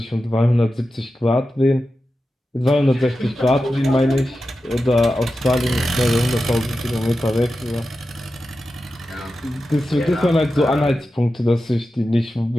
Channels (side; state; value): both; normal; correlation 0.92